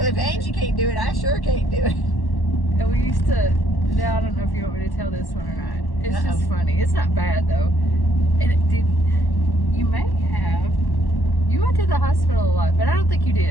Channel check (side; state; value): right; late; 1.1 ms